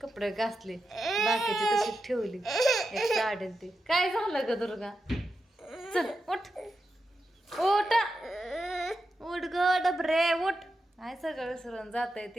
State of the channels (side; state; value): both; normal; correlation 0.89